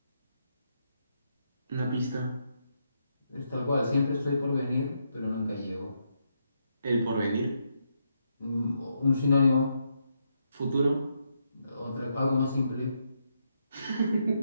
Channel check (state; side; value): inverted; both; correlation -0.80